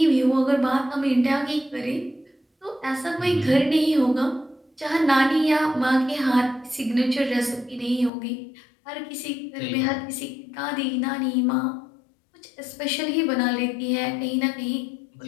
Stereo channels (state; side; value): drops out; right; at 8.1 s